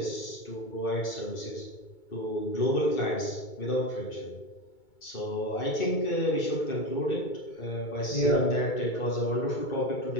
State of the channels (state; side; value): late; right; 2.2 ms